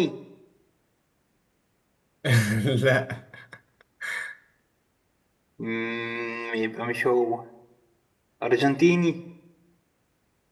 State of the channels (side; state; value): both; identical; correlation 1.00